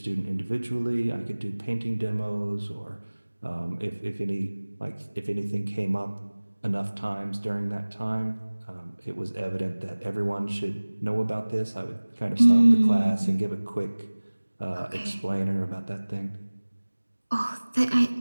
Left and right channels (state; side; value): inverted; both; correlation -1.00